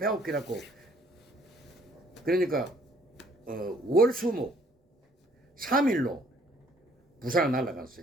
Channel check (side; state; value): both; normal; correlation 0.62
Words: 그러니까 월수목 3일로 부산을